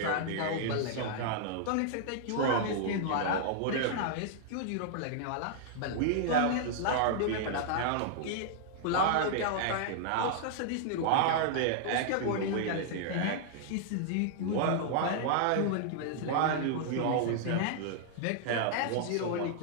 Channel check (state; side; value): different; both; correlation -0.01